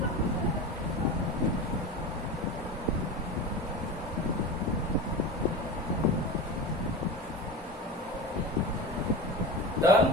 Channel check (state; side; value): normal; both; correlation 0.27